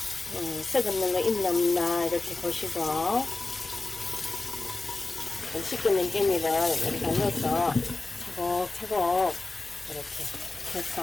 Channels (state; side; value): quieter; right; 3.2 dB